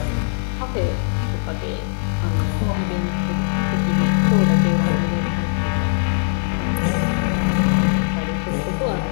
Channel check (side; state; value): right; silent; digital silence